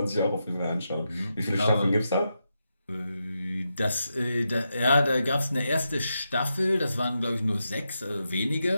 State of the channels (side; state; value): both; inverted; correlation -0.86